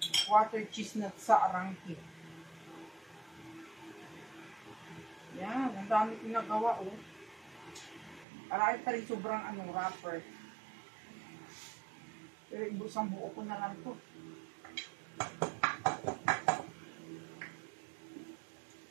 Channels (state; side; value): drops out; left; at 8.2 s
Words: water cheese nut sa Arangke. Yan, ang dami ko nagawa Marami pa rin sobrang wrapper. Pero ibusang buo ko na lang to.